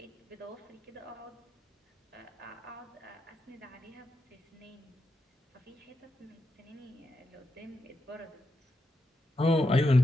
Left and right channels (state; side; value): normal; both; correlation 0.85